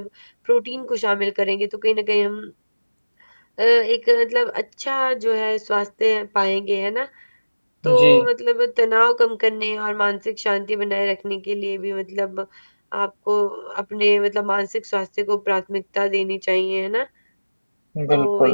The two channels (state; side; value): inverted; both; correlation -1.00